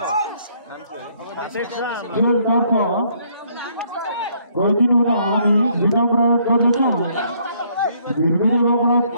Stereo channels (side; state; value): both; inverted; correlation -0.67